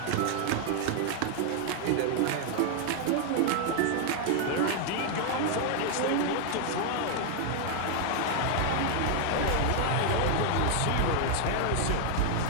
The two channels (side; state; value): both; different; correlation 0.00